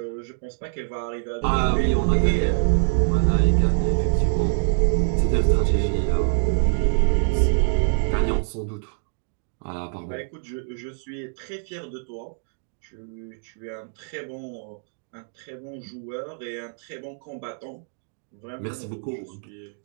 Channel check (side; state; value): left; silent; digital silence